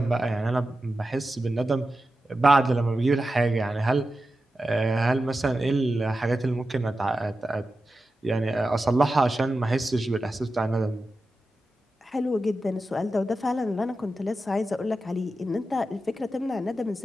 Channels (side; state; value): both; normal; correlation 0.92